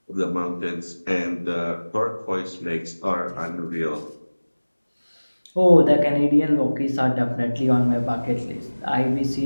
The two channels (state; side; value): inverted; both; correlation -1.00